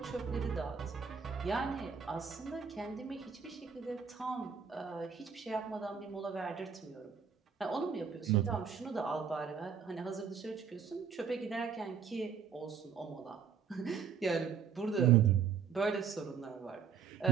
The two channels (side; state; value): left; quieter; 6.7 dB